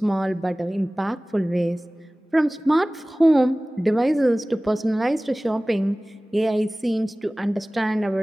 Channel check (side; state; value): both; normal; correlation 0.98